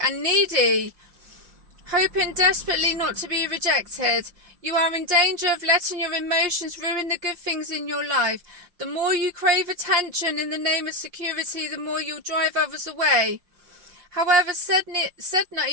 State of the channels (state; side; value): late; left; 5.6 ms